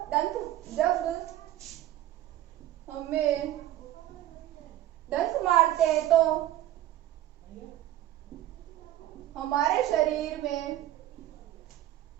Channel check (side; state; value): left; quieter; 13.4 dB